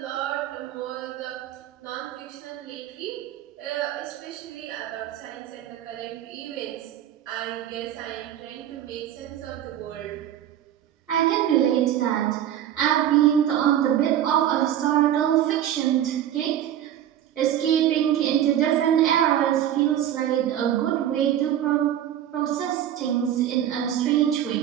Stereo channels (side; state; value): left; quieter; 11.1 dB